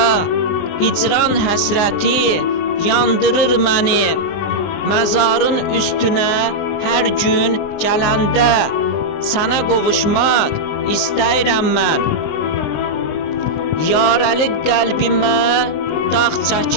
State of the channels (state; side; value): late; right; 20 ms